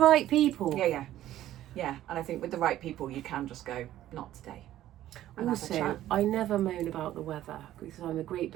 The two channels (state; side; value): quieter; left; 13.3 dB